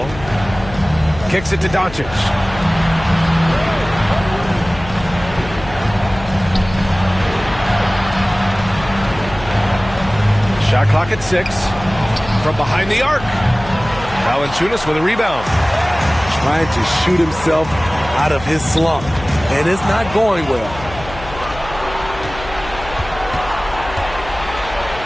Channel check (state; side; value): noise; left; hum, 14 dB below the sound